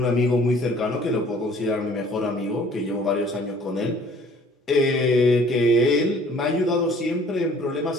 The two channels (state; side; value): normal; both; correlation 0.54